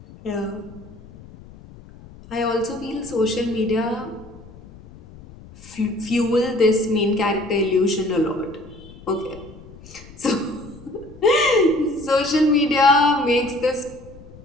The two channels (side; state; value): left; noise; rumble, 20 dB below the sound